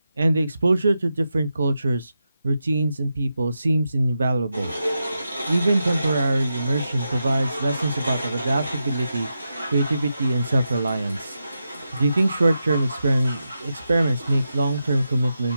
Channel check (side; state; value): both; inverted; correlation -0.88